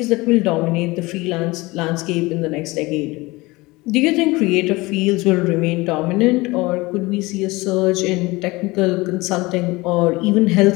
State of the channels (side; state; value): right; quieter; 22.0 dB